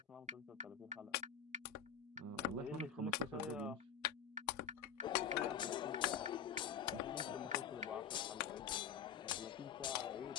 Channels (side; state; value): right; quieter; 8.0 dB